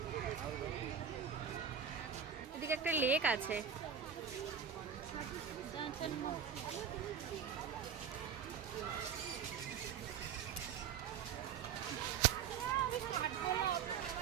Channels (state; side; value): quieter; left; 7.5 dB